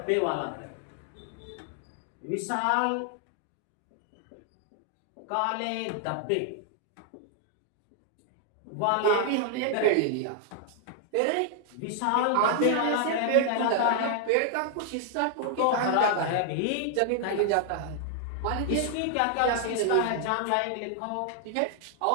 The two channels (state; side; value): different; both; correlation 0.00